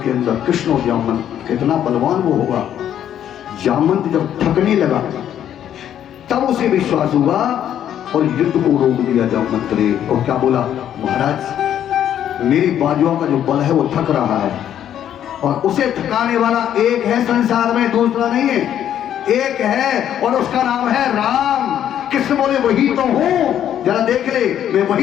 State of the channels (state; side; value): quieter; right; 10.3 dB